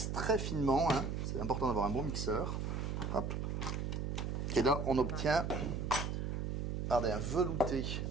très finement. Hein. C'est important d'avoir un bon mixeur. Hop. Et là, on obtient regardez, un velouté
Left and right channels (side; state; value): right; noise; hum, 2 dB below the sound